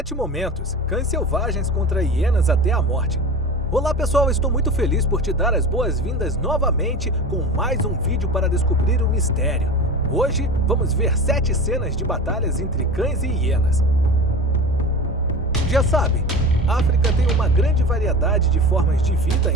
momentos, cães selvagens contra hienas até a morte. Olá pessoal, estou muito feliz por te dar as boas-vindas novamente com mais um vídeo para descobrir o mistério. Hoje vamos ver 7 cenas de batalhas entre cães e hienas. Já sabe, a África tem uma grande variedade de formas de vida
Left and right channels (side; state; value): both; normal; correlation 0.32